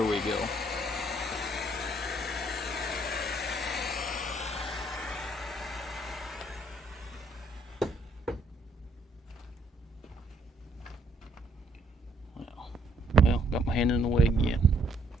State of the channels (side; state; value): both; normal; correlation 0.67